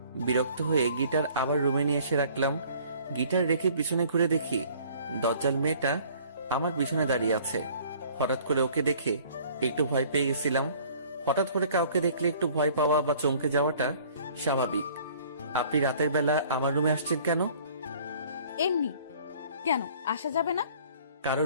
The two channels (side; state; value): both; inverted; correlation -0.53